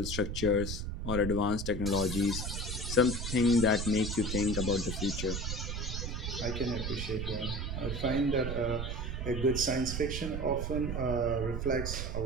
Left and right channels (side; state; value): right; noise; rumble, 3 dB below the sound